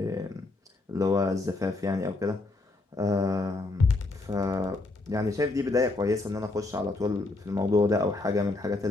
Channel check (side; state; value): right; quieter; 3.2 dB